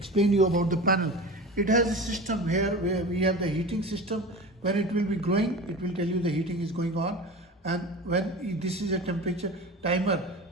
you about the panel. It has a system here where we have the heating system. When it will be growing, it will tell you the heating is going on. And when this is a temperature timer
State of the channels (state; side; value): normal; both; correlation 0.32